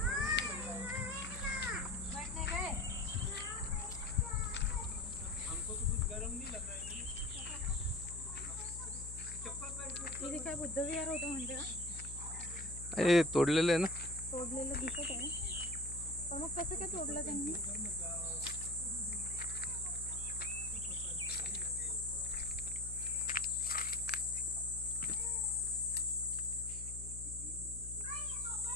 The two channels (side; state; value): left; noise; hum, 10 dB below the sound